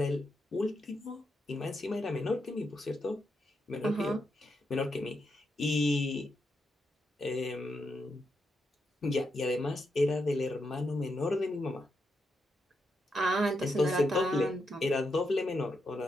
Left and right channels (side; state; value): both; normal; correlation 0.83